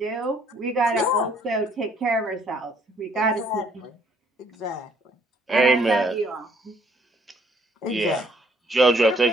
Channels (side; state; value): both; normal; correlation 0.64